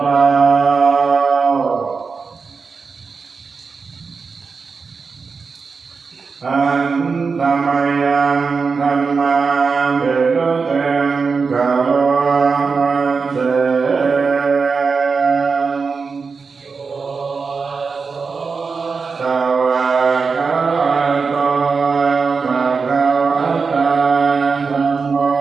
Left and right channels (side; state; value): left; quieter; 4.9 dB